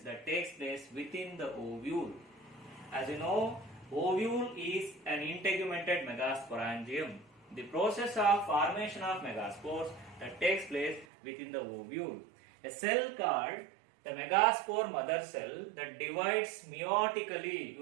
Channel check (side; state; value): left; drops out; at 11.1 s